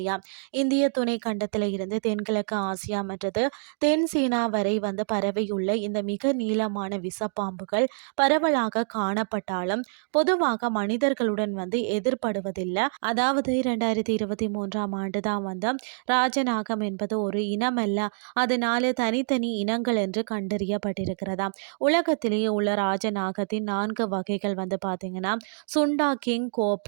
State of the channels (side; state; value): left; silent; digital silence